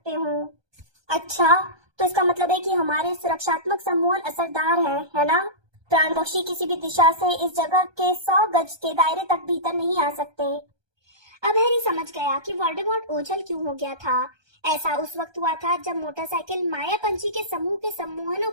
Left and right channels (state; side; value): late; left; 1.2 ms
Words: हो। अच्छा, तो इसका मतलब है कि हमारे सुरक्षात्मक सम्मोहन असरदार है ना? प्राण बख्शी किसी भी दिशा से इस जगह के 100 गज के दायरे तक भीतर नहीं आ सकते। अब हैरी समझ गया कि वोल्डेमॉर्ट ओझल क्यों हो गया था। ऐसा उस वक्त हुआ था जब मोटरसाइकिल माया पंछी के समूह के सम्मोहनों